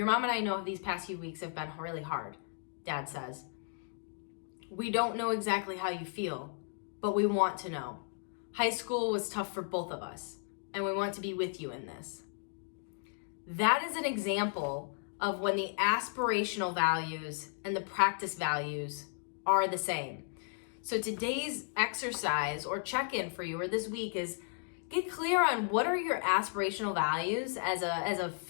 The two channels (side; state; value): right; silent; 55 dB below the other